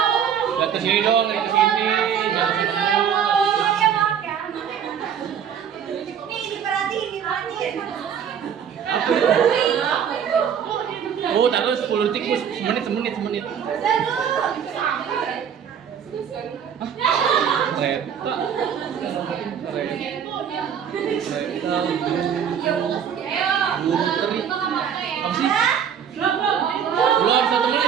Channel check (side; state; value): left; quieter; 8.2 dB